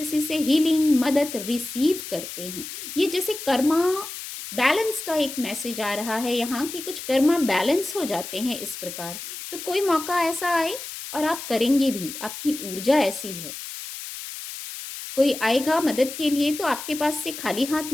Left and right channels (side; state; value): left; noise; hiss, 10 dB below the sound